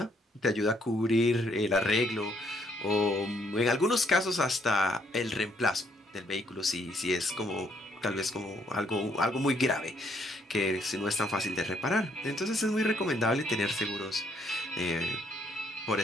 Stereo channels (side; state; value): both; normal; correlation 0.69